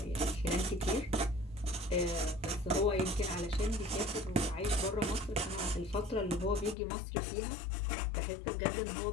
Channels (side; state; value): right; drops out; at 6.8 s